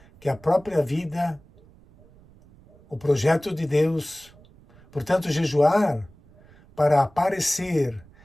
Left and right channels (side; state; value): right; noise; rumble, 26 dB below the sound